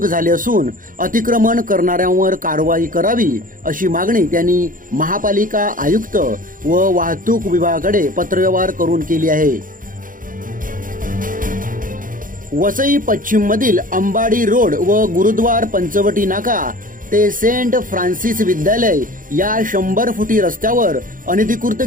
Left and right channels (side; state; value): left; late; 0.40 ms